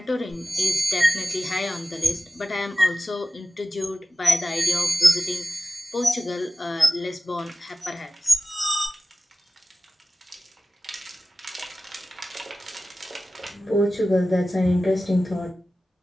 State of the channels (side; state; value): both; normal; correlation 0.95